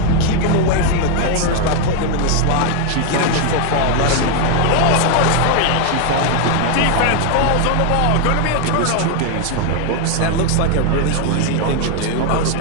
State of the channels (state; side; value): different; both; correlation 0.01